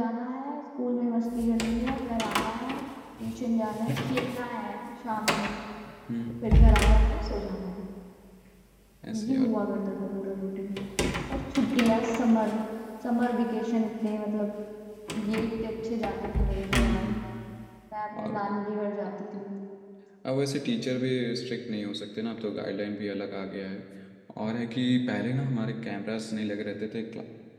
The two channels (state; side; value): identical; both; correlation 1.00